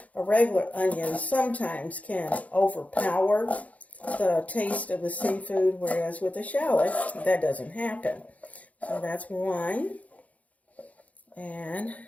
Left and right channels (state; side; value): late; right; 0.069 ms